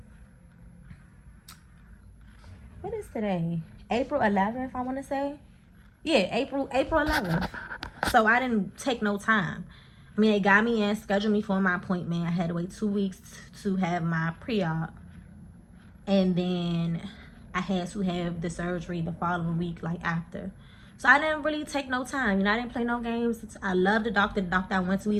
What is today? April 11th, I want to say. Yeah, April 11th. So I didn't take no time. I mean, they got me in, scheduled me for my appointment. I had to wait 2 weeks to have my pre-op. And then I had to have the surgery the following week, like after. So I didn't really take no time. You know, I didn't play no games. I love the doctor. The doctor I went to,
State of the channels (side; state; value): both; identical; correlation 1.00